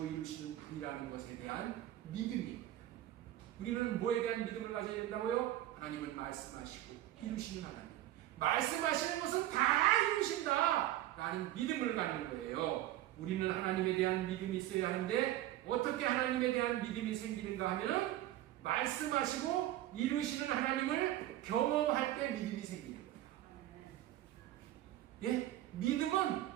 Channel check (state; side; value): quieter; left; 14.2 dB